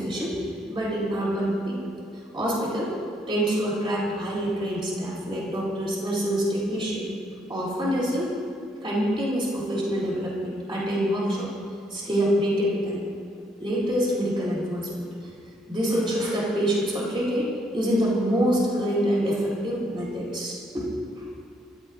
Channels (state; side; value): normal; both; correlation 0.71